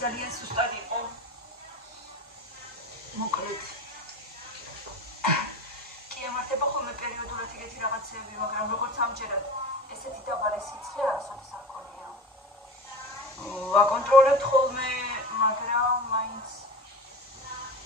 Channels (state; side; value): normal; both; correlation 0.31